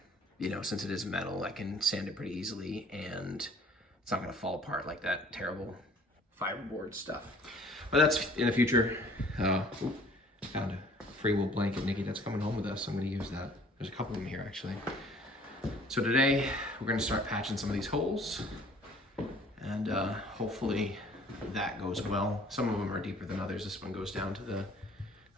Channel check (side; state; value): both; normal; correlation 0.53